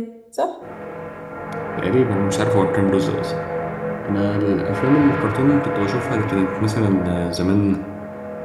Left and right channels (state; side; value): identical; both; correlation 1.00